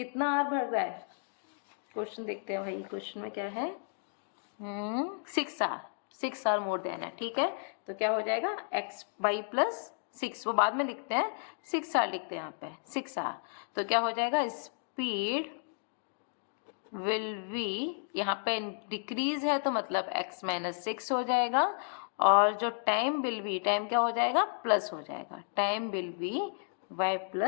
आर बढ़ रहा है, क्वेश्चन देखते हैं भाई, क्वेश्चन में क्या है, 6 आर मोर देन है, ठीक है। तो क्या हो जाएगा, एक्स वाई प्लस 6, वो बाद में लिखते हैं, 6 आर लिखते हैं यहाँ पे, 6 आर। तो क्या हो जाएगा, स्पीड विल बी, यहाँ पे डिक्रीज है तो मतलब x माइनस 6 हो जाएगा, और जो टाइम विल बी, टाइम क्या हो जाएगा, प्लस हो जाएगा, time will be y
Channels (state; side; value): silent; right; digital silence